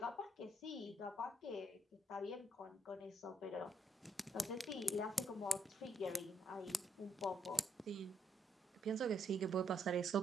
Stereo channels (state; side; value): normal; both; correlation 0.75